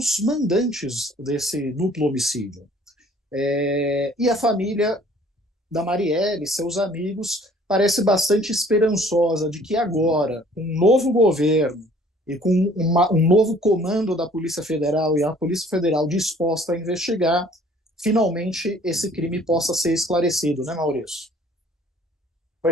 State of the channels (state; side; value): normal; both; correlation 0.55